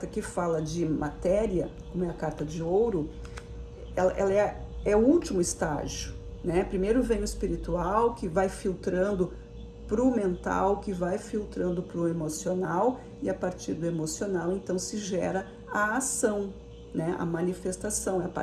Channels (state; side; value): identical; both; correlation 1.00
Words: que fala de matéria, como é a carta de ouro, ela é o último estágio, né? Primeiro vem o espiritual, que vai filtrando para o mental, que vai filtrando para o emocional, e a partir do emocional, então, se gera a ação, né? A manifestação. É a